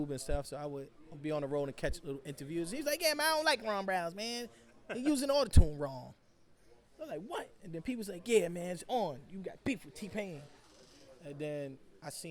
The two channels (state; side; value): identical; both; correlation 1.00